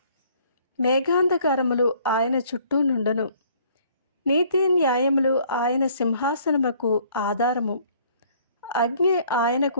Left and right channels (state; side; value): inverted; both; correlation -0.59